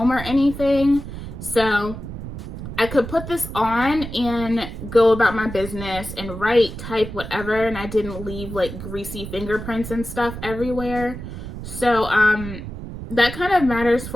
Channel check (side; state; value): right; noise; rumble, 9 dB below the sound